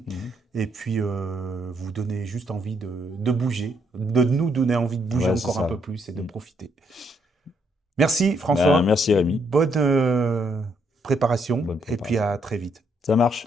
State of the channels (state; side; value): normal; both; correlation 0.73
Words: Et puis, vous donner juste envie de bouger, de nous donner envie de bouger Ouais, c'est encore un peu ça. plus et de Hmm. profiter. Merci Ben, François, merci Rémi, bonne préparation bonne et puis préparation. à très vite. Ça marche,